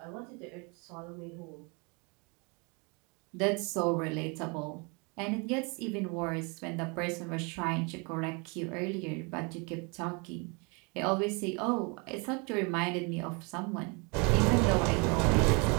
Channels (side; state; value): left; quieter; 31.4 dB